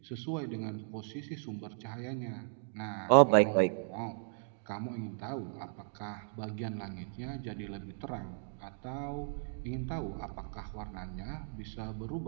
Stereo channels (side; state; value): left; silent; digital silence